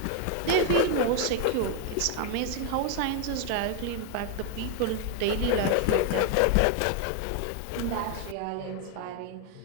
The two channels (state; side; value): different; both; correlation 0.00